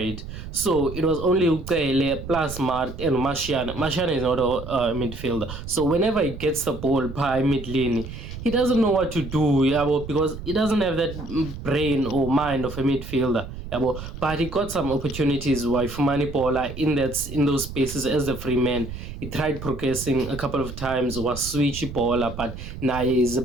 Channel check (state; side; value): noise; right; rumble, 10 dB below the sound